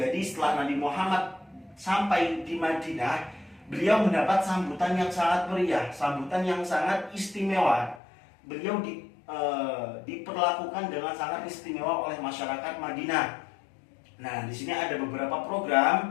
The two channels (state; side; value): drops out; right; at 8.0 s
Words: setelah Nabi Muhammad sampai di Madinah, beliau mendapat sambutan yang sangat meriah, sambutan yang sangat istimewa. Beliau diperlakukan dengan sangat istimewa oleh masyarakat Madinah. Nah, di sini ada beberapa